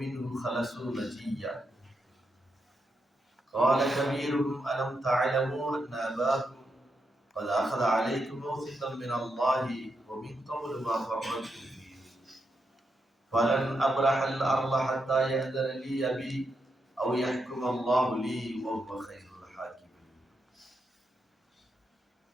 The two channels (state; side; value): normal; both; correlation 0.83